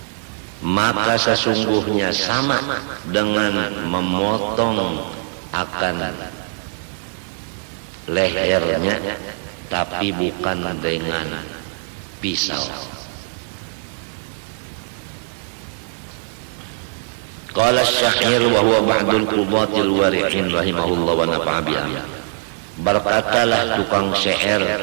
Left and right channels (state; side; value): silent; left; digital silence